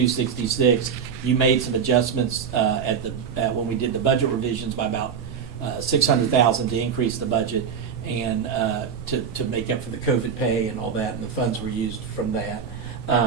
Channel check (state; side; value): quieter; left; 7.0 dB